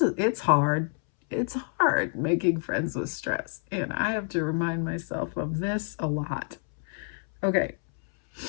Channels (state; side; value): silent; right; 60 dB below the other